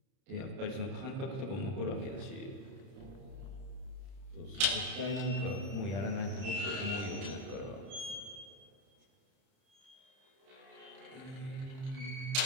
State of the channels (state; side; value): late; left; 30 ms